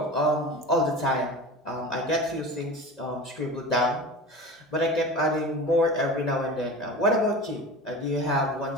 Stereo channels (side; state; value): both; normal; correlation 0.32